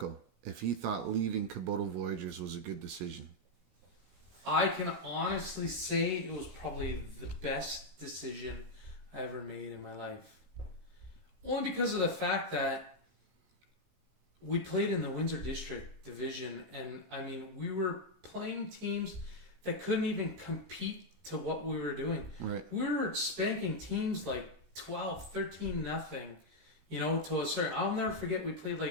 if he thought leaving Kubota Voyagers was a good decision. I can honestly say it was probably the best decision I ever made in my life. Only because of the fact that we played in the Windsor District Division, and I mean, we were playing teams that couldn't even compete to what we were doing. Right. We were spanking teams like 12, 13, nothing, to a certain... I'll never forget, we played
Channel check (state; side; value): late; left; 16 ms